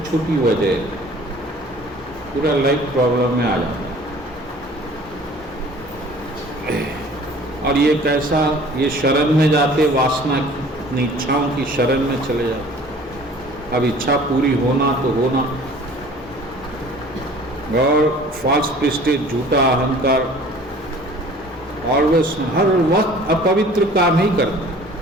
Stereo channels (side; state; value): both; normal; correlation 0.49